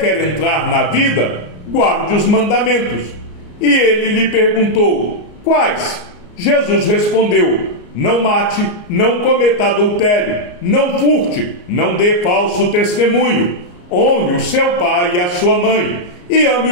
entrar na vida, guarde os mandamentos. E ele lhe perguntou: quais? Jesus respondeu: não mate, não cometa adultério, não furte, não dê falso testemunho, honre o seu pai e a sua mãe, e ame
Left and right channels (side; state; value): right; late; 34 ms